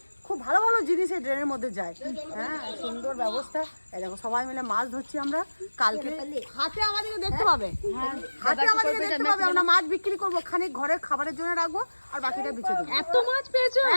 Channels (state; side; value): inverted; both; correlation -1.00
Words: খুব ভালো ভালো জিনিস এই ড্রেনের মধ্যে যায়। হ্যাঁ, সুন্দর ব্যবস্থা। এই দেখো সবাই মিলে মাছ ধরছি আমরা। কালকে হাটে আমাদেরকে দেখতে পাবে, আমরা মাছ বিক্রি করবো, খানিক ঘরের খাবারের জন্য রাখবো, আর বাকিটা বেঁচে দেবো। এত মাছ পেয়েছো?